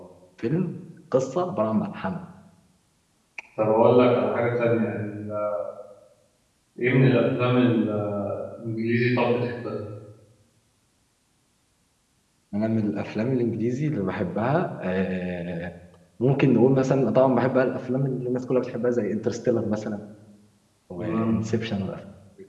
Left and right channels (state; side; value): identical; both; correlation 1.00